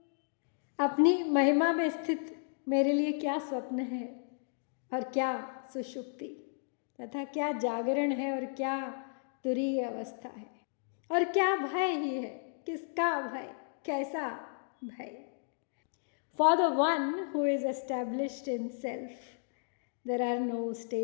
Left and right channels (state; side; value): silent; right; digital silence